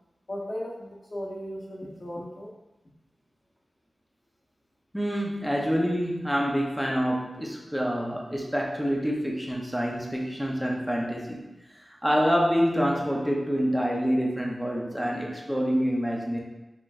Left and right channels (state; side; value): normal; both; correlation 0.97